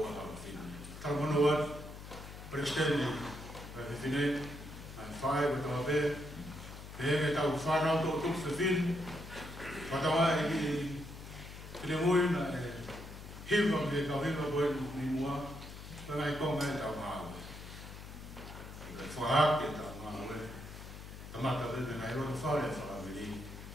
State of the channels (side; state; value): left; noise; hum, 12 dB below the sound